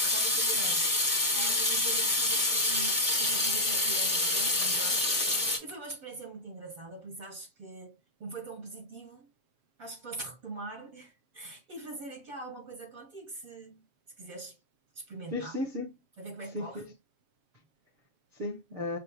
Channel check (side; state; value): left; late; 7.4 ms